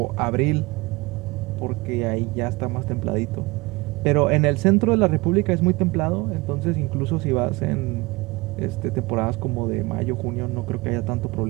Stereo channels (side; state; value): left; quieter; 23.5 dB